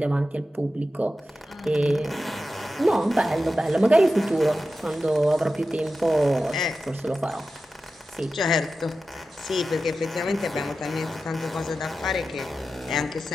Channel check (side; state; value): both; normal; correlation 0.92